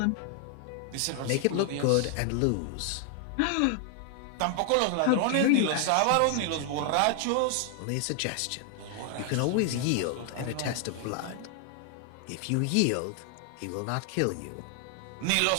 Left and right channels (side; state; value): both; different; correlation 0.00